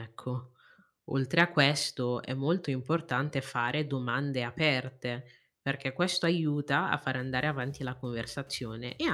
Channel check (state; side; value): identical; both; correlation 1.00